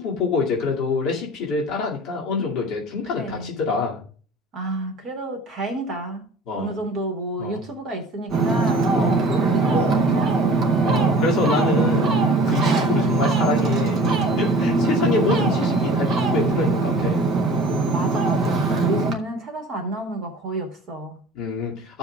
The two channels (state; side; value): normal; both; correlation 0.43